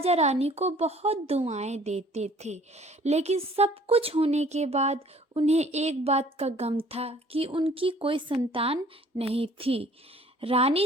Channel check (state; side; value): normal; both; correlation 0.55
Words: रानी को बहुत दुआएं देते थे। लेकिन सब कुछ होने के बाद उन्हें एक बात का गम था कि उनकी कोई संतान नहीं थी। रानी